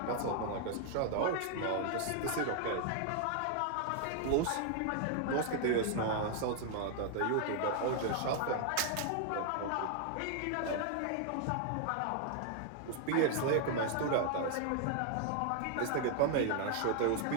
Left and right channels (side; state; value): both; different; correlation 0.00